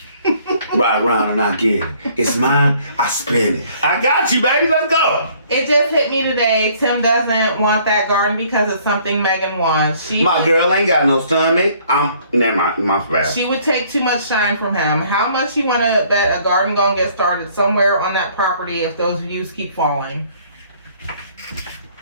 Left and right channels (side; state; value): both; inverted; correlation -0.60